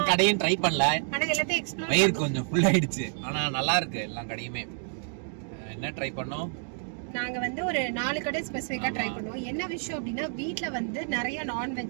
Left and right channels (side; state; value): left; silent; 59 dB below the other